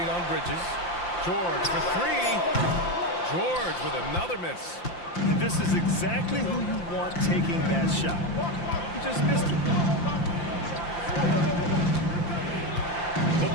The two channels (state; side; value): late; right; 5.8 ms